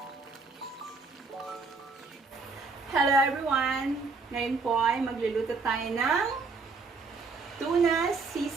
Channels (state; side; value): quieter; left; 4.3 dB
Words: everyone! Ngayon po ay magluluto tayo ng tuna